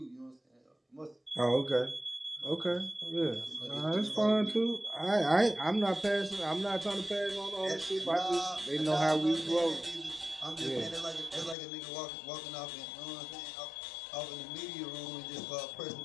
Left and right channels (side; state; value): right; drops out; at 11.6 s